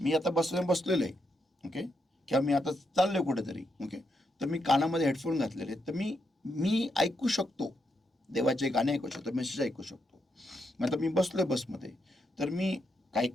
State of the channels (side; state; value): both; normal; correlation 0.81